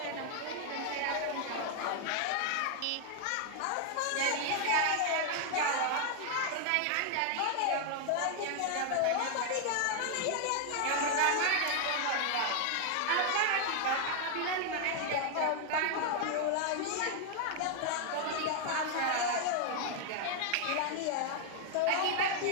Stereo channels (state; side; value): different; both; correlation 0.00